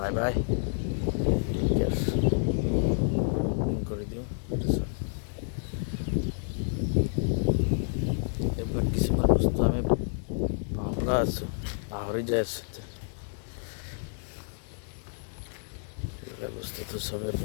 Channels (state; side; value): silent; right; digital silence